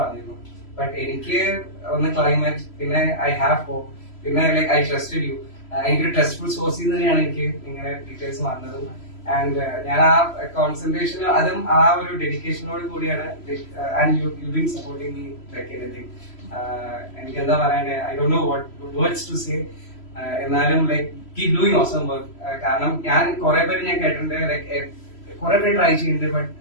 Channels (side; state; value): right; late; 3.0 ms